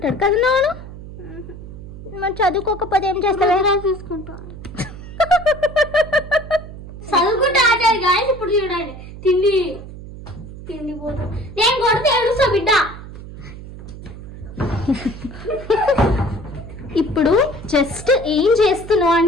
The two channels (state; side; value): noise; right; hum, 13 dB below the sound